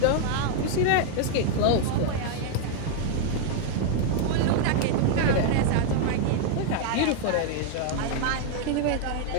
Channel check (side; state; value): both; different; correlation 0.00